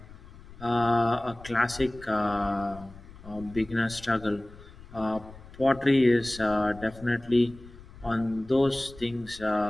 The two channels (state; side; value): noise; left; rumble, 19 dB below the sound